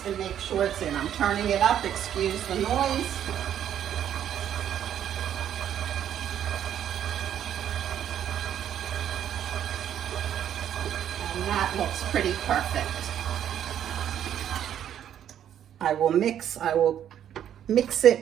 and make sure it's in. I'm turning it up, excuse the noise. And that looks pretty perfect. I will mix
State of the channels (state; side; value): quieter; left; 10.1 dB